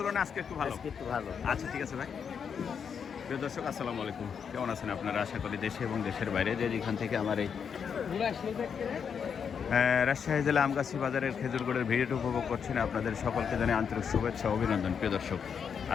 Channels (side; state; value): right; quieter; 6.9 dB